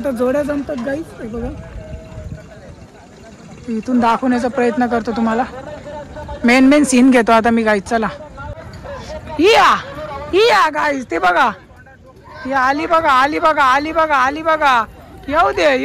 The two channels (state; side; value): identical; both; correlation 1.00